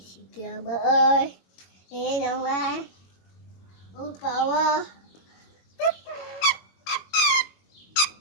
kìa bơi đi đâu ai ô bầu ơi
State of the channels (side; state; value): right; late; 22 ms